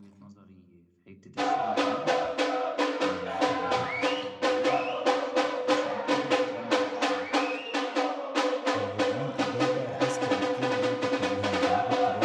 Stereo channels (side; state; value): both; identical; correlation 1.00